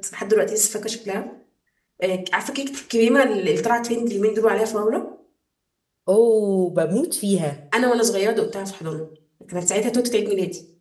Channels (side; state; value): both; identical; correlation 1.00